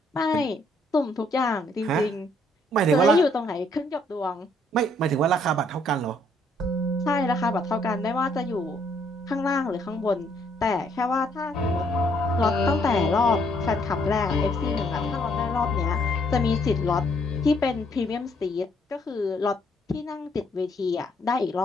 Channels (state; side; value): normal; both; correlation 0.68